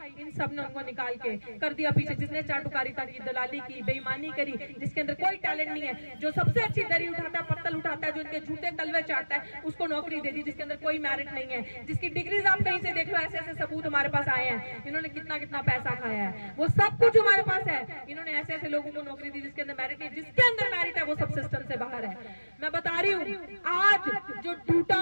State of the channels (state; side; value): inverted; both; correlation -1.00